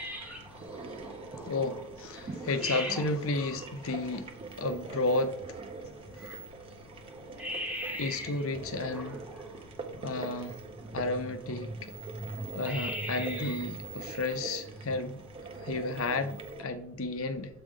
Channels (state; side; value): noise; left; rumble, 22 dB below the sound